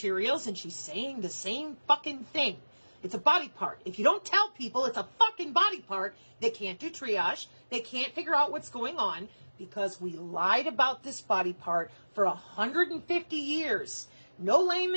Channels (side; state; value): both; inverted; correlation -1.00